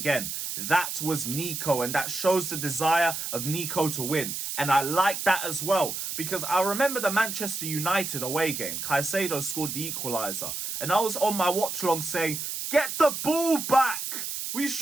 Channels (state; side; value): noise; right; hiss, 5 dB below the sound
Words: That was Nico, and that shows the desire of Nico to win. And I like that as well, because I remember the Manchester United away game. Caicedo scored the equaliser, and I was on my watch-along saying, get the ball back! We